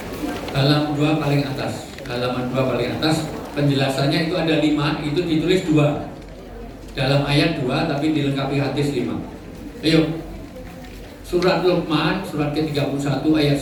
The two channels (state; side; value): identical; both; correlation 1.00